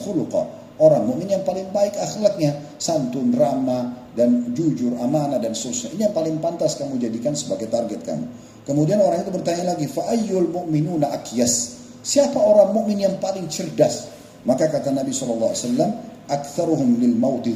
khuluqa. Orang mukmin yang paling baik akhlaknya, santun, ramah, dan jujur, amanah, dan seterusnya. Ini yang paling pantas kamu jadikan sebagai target kamu. Kemudian orang itu bertanya lagi, fa'ayyul mu'minuna akyas? Siapa orang mukmin yang paling cerdas? Maka kata Nabi SAW, aktsaruhum lil mauti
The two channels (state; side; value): identical; both; correlation 1.00